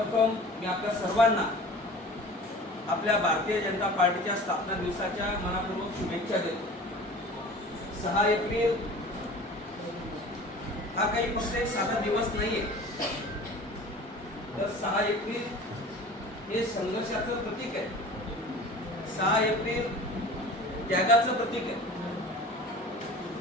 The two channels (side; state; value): both; normal; correlation 0.41